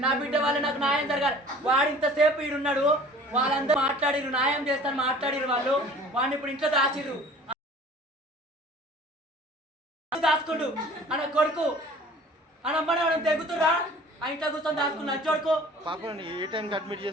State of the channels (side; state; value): both; normal; correlation 0.47